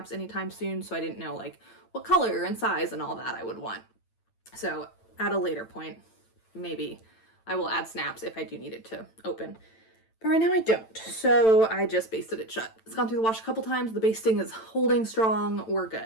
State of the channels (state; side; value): late; right; 9.0 ms